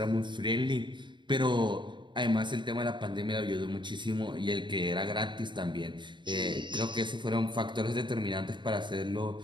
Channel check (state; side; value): late; left; 0.23 ms